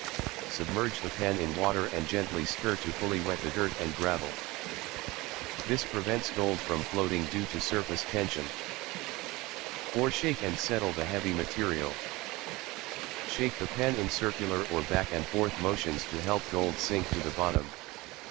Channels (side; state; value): left; quieter; 21.5 dB